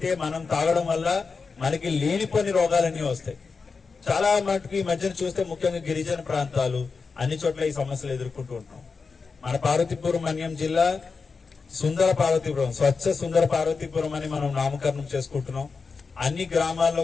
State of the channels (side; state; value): right; quieter; 4.8 dB